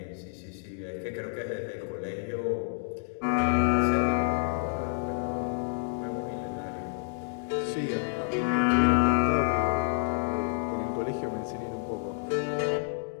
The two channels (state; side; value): silent; right; digital silence